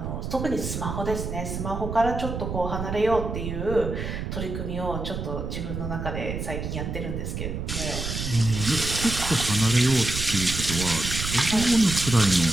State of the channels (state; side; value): noise; right; rumble, 5 dB below the sound